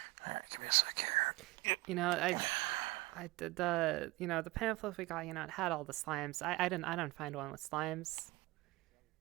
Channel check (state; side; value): quieter; left; 20.9 dB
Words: All right, give me a sec here. You know, I did the pamphlet we got. You know, it had all the slimes. I didn't find one with slimes.